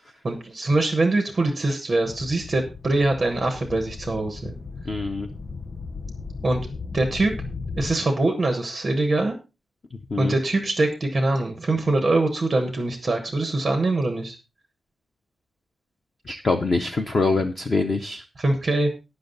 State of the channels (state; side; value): normal; both; correlation 0.91